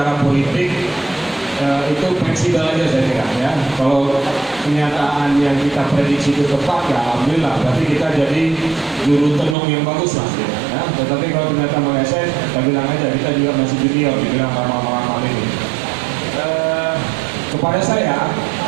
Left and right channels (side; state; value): left; drops out; at 9.6 s